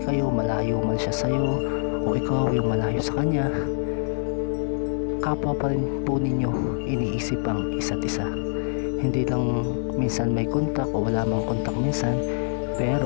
kayo, malayo man siya sa'yo o ikaw yung malayo sa kanya, kapwa pa rin po ninyo iniisip ang isa't isa. Hindi lang minsan may kontak o wala mang kontak minsan,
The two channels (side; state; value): right; silent; digital silence